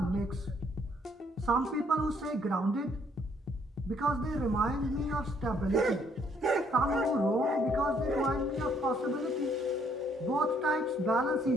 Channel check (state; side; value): normal; both; correlation 0.67